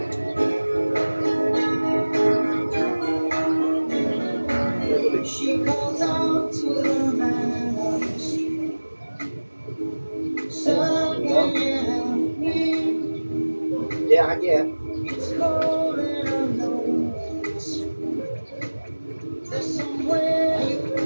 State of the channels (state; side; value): inverted; both; correlation -1.00